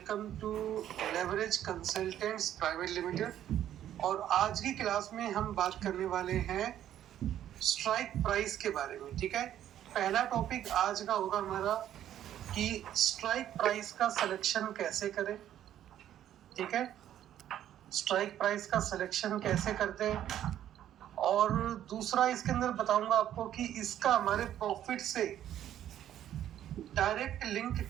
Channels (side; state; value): left; quieter; 11.3 dB